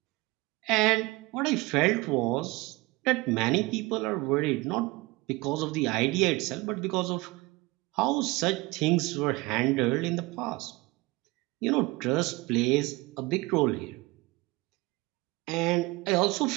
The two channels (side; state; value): left; quieter; 23.1 dB